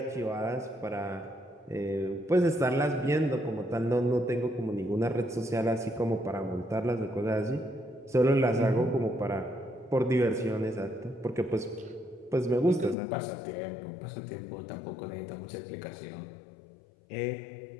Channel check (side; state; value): right; drops out; at 13.0 s